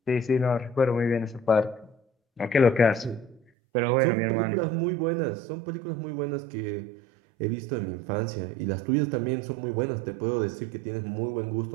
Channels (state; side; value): drops out; left; at 3.4 s